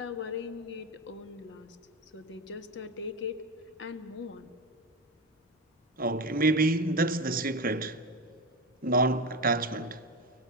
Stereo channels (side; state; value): both; normal; correlation 0.19